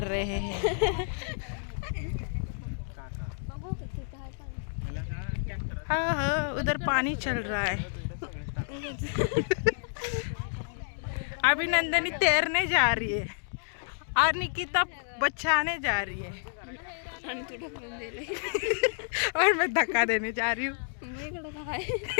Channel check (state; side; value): silent; right; digital silence